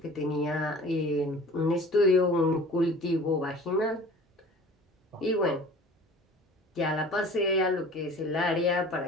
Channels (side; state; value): both; normal; correlation 0.44